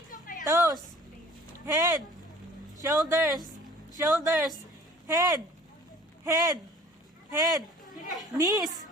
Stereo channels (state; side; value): normal; both; correlation 0.49